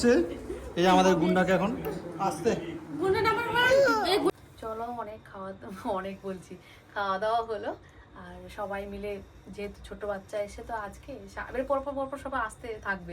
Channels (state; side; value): identical; both; correlation 1.00